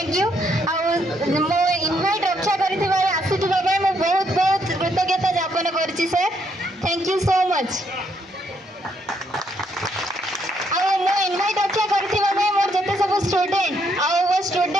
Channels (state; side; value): normal; both; correlation 0.73